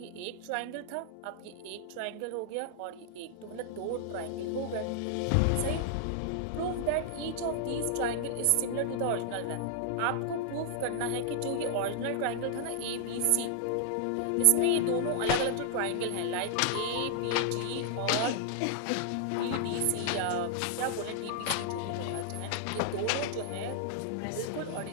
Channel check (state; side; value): different; both; correlation -0.01